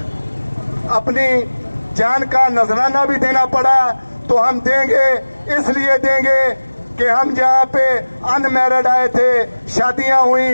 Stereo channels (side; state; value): both; inverted; correlation -1.00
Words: اپنی جان کا نذرانہ بھی دینا پڑا تو ہم دیں گے. اس لیے دیں گے کہ ہم جہاں پہ ان میرڈ آئے تھے, شادیاں